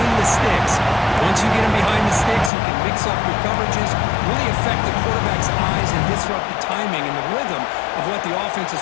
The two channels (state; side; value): drops out; right; at 2.5 s